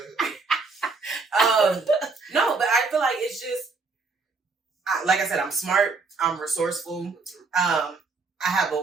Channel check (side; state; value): left; quieter; 4.2 dB